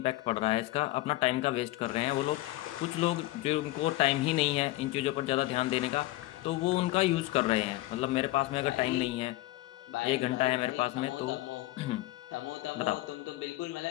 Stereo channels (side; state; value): right; quieter; 17.8 dB